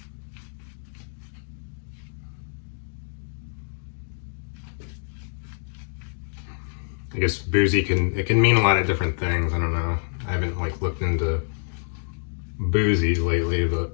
I guess boozy can mean a lot of different things. I don't know. I haven't like looked into boozy lately, but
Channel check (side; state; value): right; silent; digital silence